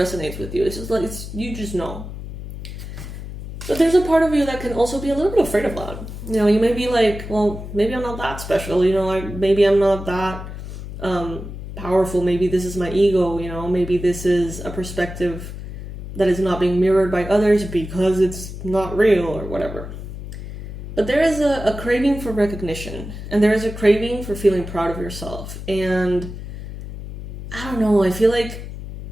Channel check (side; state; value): left; noise; hum, 10 dB below the sound